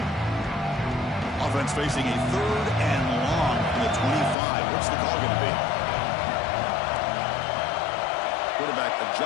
Offense facing a 3rd and long from the 25. What's the call going to be? Quarterback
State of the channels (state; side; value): drops out; right; at 4.4 s